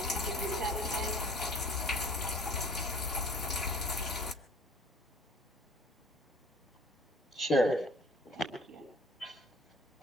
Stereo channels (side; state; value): both; normal; correlation 0.49